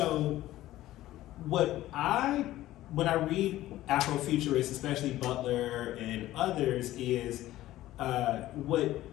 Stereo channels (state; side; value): quieter; right; 15.1 dB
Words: when I read Afrofuturists, especially Butler and others, is what